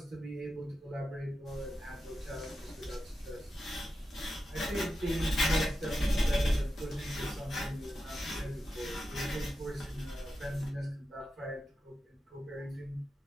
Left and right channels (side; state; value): both; normal; correlation 0.90